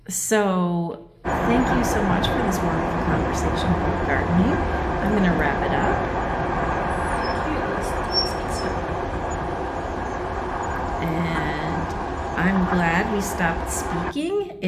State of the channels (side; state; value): both; identical; correlation 1.00